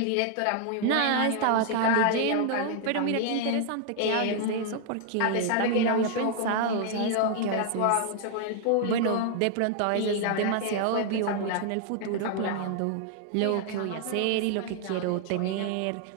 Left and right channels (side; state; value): both; different; correlation 0.00